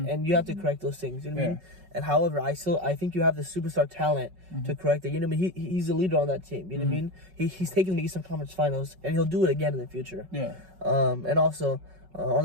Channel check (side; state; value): left; late; 5.4 ms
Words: you have to correct those things. You know what I mean? And however, I think you have the superstar talent to correct it. You know what I mean? He's a leader on that team. You know what I mean? He's taking the Eastern Conference Finals, and he'll do it again in the future. Yeah. And also on